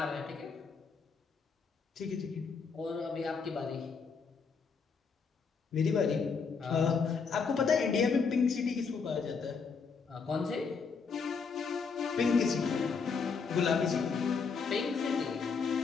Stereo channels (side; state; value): right; quieter; 5.3 dB